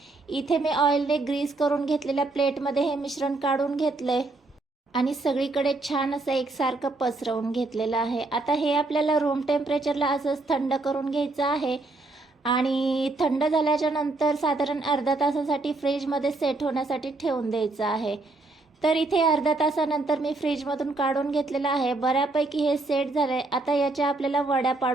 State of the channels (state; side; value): quieter; left; 3.2 dB